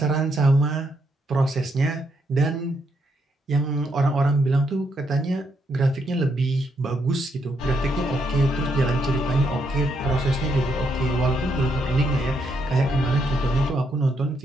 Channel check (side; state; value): both; normal; correlation 0.77